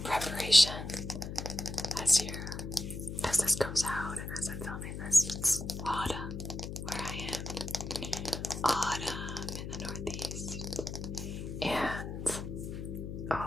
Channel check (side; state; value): left; noise; hum, 6 dB below the sound